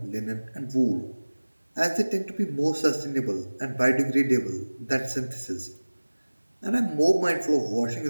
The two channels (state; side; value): inverted; both; correlation -1.00